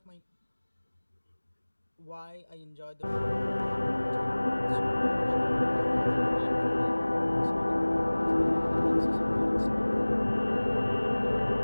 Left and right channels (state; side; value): inverted; both; correlation -1.00